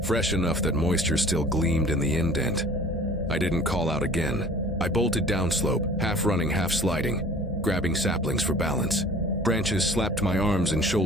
fresh enough that moisture still gleamed in the indent. I didn't call out again. I bolted downslope, half running, half sliding, grabbing saplings for balance. Branches slapped my arms and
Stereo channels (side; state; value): both; normal; correlation 0.47